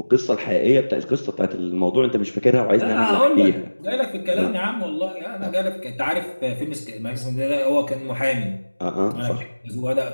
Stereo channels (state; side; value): inverted; both; correlation -1.00